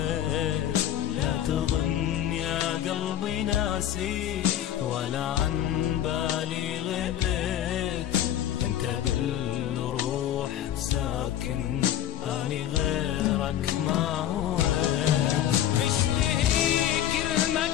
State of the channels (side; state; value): right; quieter; 11.1 dB